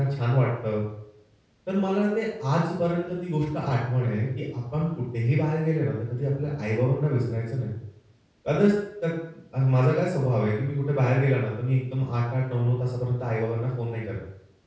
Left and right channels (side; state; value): both; identical; correlation 1.00